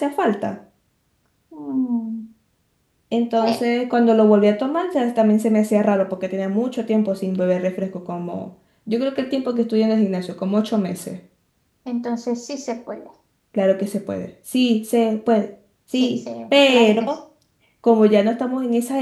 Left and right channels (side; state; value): both; identical; correlation 1.00